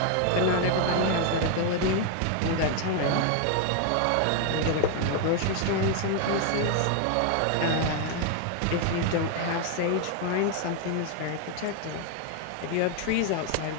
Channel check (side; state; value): both; different; correlation 0.00